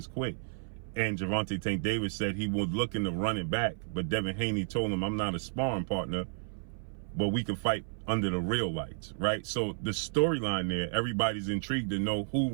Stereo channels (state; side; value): silent; left; 56 dB below the other